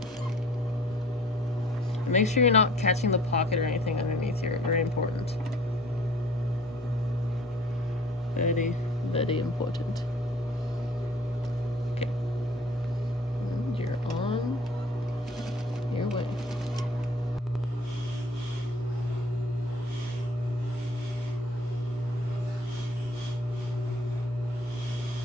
And make sure you're not catching the pocket or anything underneath here. Very important. Very, very important. Okay. And you're on your way.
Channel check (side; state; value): both; normal; correlation 0.52